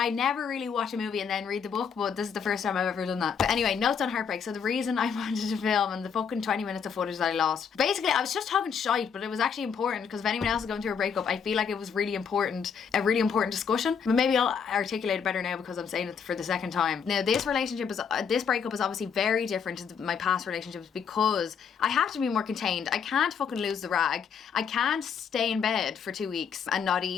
never really watch a movie and then read the book, but this is the first time I've ever done that. But anyway, notes on heartbreak. So the reason I wanted to film and the fucking 20 minutes of footage that I lost, basically I was just talking shite light, but it was actually important, because if anyone else is going through a breakup, I feel like it was a really important discussion. But maybe I'll articulate it better now because I'm saying it for the second time. Now, this breakup is obviously very different to my past relationships, because I have to be more contained. I can't fucking lose the rag. I can't stay in bed for 2 weeks and not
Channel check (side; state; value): right; quieter; 6.8 dB